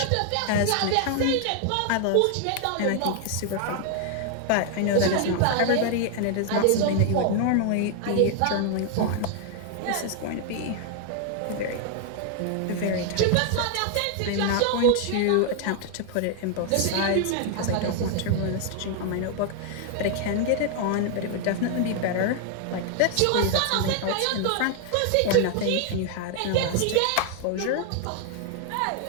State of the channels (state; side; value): different; both; correlation 0.00